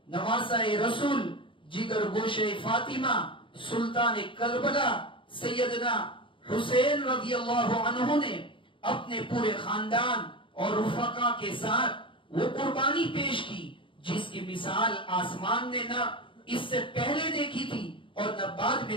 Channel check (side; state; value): right; late; 0.25 ms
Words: نواسہ رسول جگر گوشہ فاطمہ سلطان کربلا سیدنا حسین رضی اللہ عنہ نے اپنے پورے خاندان اور رفقا کے ساتھ وہ قربانی پیش کی جس کی مثال آسمان نے نہ اس سے پہلے دیکھی تھی اور نہ بعد